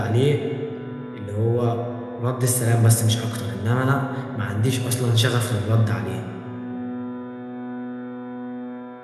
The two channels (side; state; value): both; identical; correlation 1.00